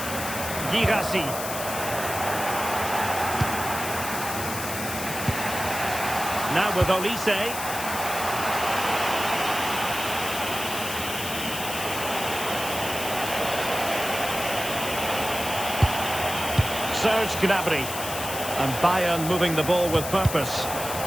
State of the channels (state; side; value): noise; left; hiss, 7 dB below the sound